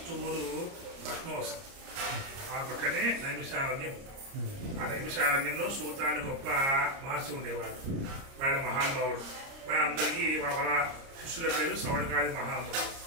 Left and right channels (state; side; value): late; left; 30 ms